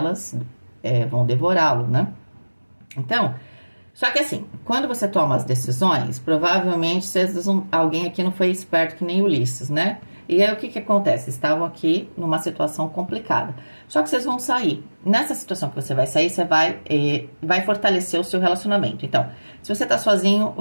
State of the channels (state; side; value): inverted; both; correlation -1.00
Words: vão devorá-lo, né? Então... Só que assim, quando você toma as decisões, provavelmente alguém aqui não foi esperto que nem Ulisses, né? E aí o que acontece? Estavam aqui numa situação complicada. Só que vocês vão sair. Nessa situação que você vai sair, você vai fortalecer o seu relacionamento. Então, se você tá sozinho, o